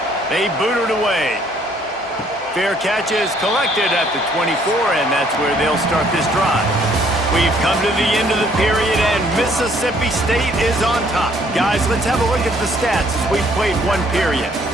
They boot it away. Fair catch is collected at the 24, and that's where they'll start this drive. We've come to the end of the period, and Mississippi State is on top. Guys, let's have a look at the stats as we've played one period.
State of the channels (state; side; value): normal; both; correlation 0.63